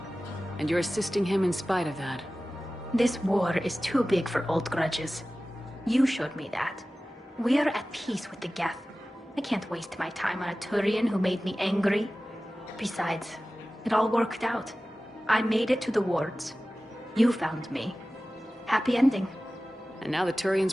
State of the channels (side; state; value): both; normal; correlation 0.96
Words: And you're assisting him in spite of that. This war is too big for old grudges. You showed me that. We are at peace with the Geth. I can't waste my time on a Turian who made me angry. Besides, it all worked out. I made it to the wards. You found me. Happy ending. And now the